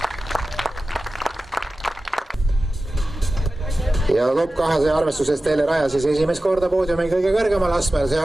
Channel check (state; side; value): normal; both; correlation 0.95